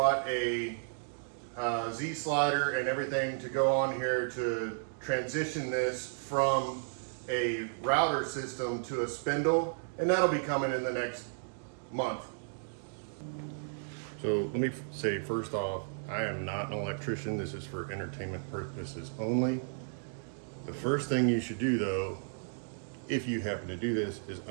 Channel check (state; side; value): silent; left; digital silence